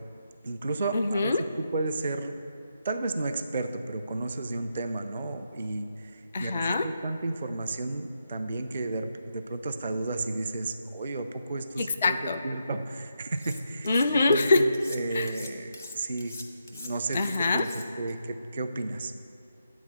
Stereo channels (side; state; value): both; inverted; correlation -0.82